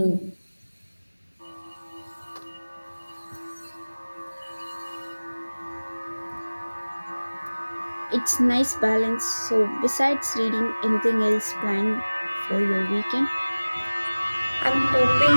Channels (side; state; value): both; inverted; correlation -1.00